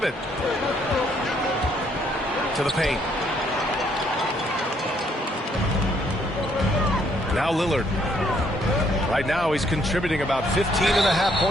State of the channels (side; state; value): both; normal; correlation 0.68